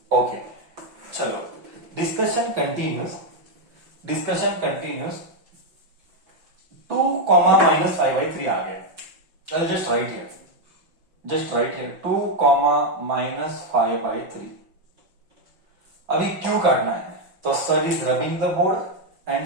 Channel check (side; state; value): left; late; 5.7 ms